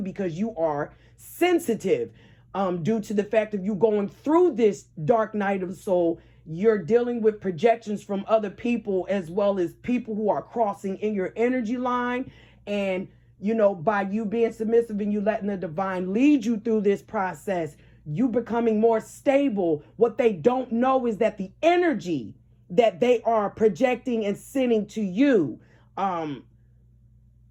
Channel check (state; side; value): identical; both; correlation 1.00